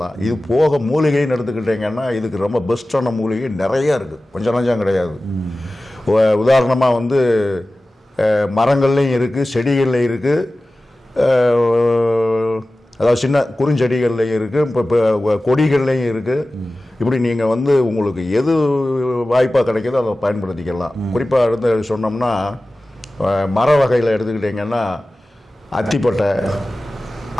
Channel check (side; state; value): both; normal; correlation 0.96